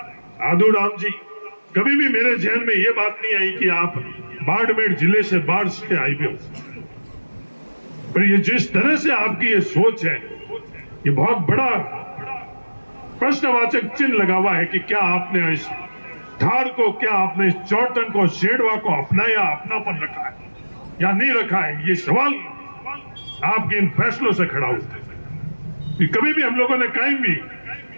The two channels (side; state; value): both; inverted; correlation -1.00